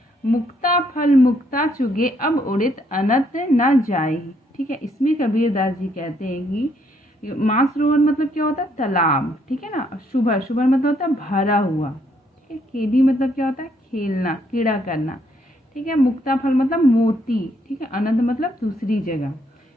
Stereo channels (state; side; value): normal; both; correlation 0.71